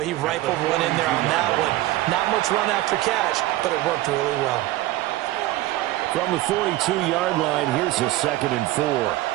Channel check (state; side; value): quieter; left; 16.6 dB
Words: he rifled one in there on that one. Not much run after catch, but it worked really well. From the 42-yard line, here's a 2nd and 4.